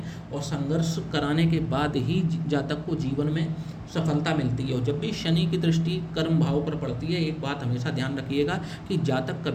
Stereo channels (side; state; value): both; identical; correlation 1.00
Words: और संघर्ष कराने के बाद ही जातक को जीवन में सफलता मिलती है। और जब भी शनि की दृष्टि कर्म भाव पर पड़ती है, एक बात हमेशा ध्यान रखिएगा कि जातक